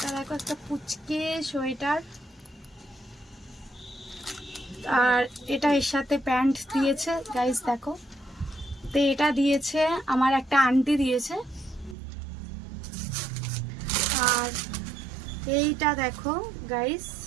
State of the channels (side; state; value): left; drops out; at 12.0 s